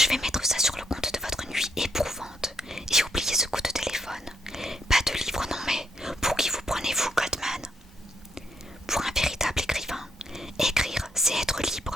vais mettre ça sur le compte de votre nuit éprouvante et oubliez ce coup de téléphone. Pas de livre, non mais pour qui vous prenez-vous, Goldman? Pour un véritable écrivain, écrire, c'est être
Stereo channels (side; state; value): both; normal; correlation 0.75